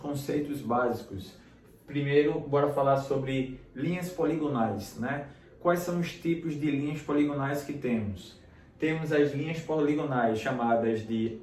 básicos. Primeiro, bora falar sobre linhas poligonais, né? Quais são os tipos de linhas poligonais que temos? Temos as linhas poligonais chamadas de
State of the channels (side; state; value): both; identical; correlation 1.00